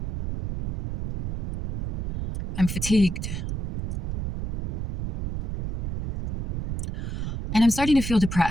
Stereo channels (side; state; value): right; noise; rumble, 4 dB below the sound